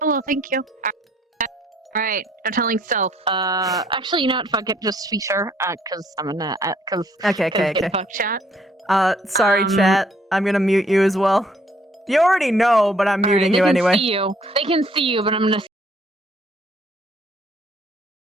thank you. Alright, I'm telling Stealth. Actually, you know what? Fuck it, just speak her. Cause I'm gonna, Okay. Fuck chat. Sorry, chat. I'm gonna mute you as well. You already know, but I'm muting you anyway. They can see you, but I'm gonna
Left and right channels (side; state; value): both; normal; correlation 0.64